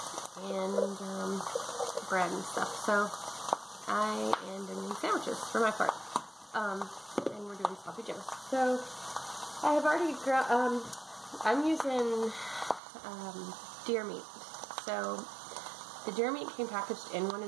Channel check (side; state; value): left; drops out; at 12.8 s